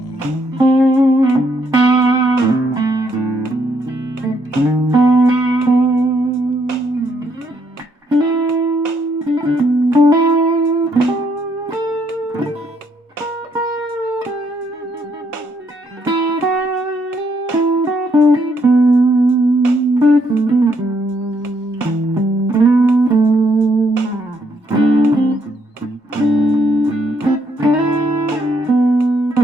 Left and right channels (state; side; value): normal; both; correlation 0.72